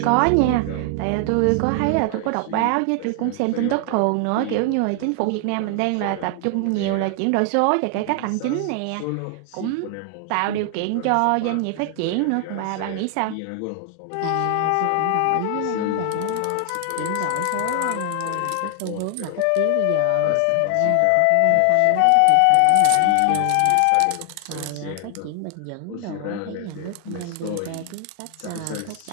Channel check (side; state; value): both; different; correlation 0.00